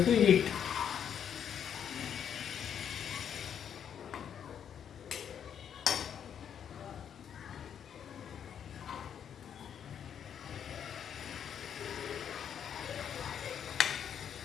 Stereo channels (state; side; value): quieter; right; 8.5 dB